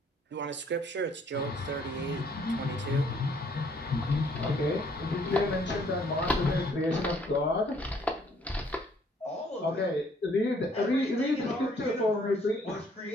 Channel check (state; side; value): normal; both; correlation 0.63